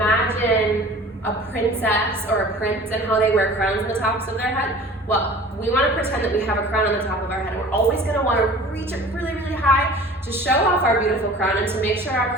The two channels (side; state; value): both; normal; correlation 0.44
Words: a princess or a prince and how they wear crowns on the tops of their head. Well, we want to pretend that we have a crown on the top of our head. We're always going to want to reach it really, really high to show off our beautiful crown and to make sure our